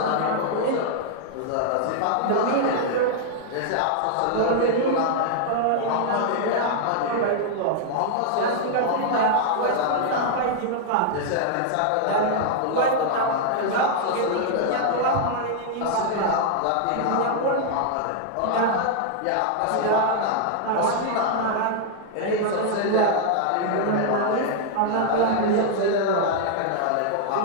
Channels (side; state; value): both; different; correlation -0.01